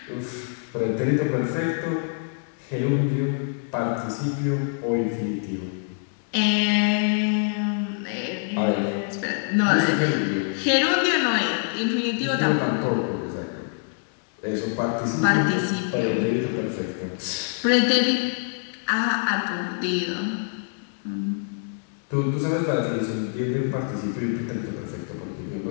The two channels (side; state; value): right; silent; 62 dB below the other